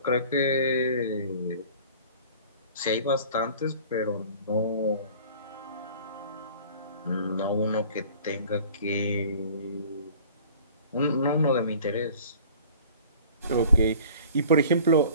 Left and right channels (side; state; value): both; inverted; correlation -0.47